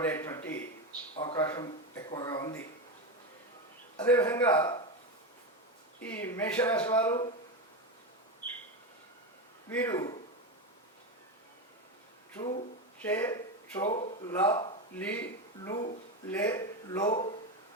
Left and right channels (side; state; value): both; normal; correlation 0.16